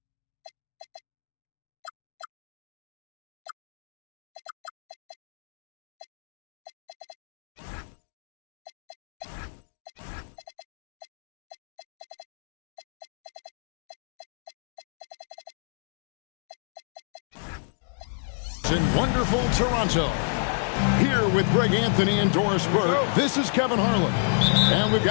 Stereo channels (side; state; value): right; silent; digital silence